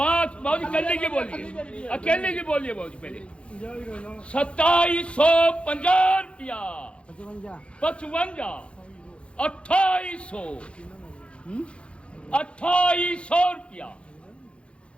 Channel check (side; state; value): right; late; 0.059 ms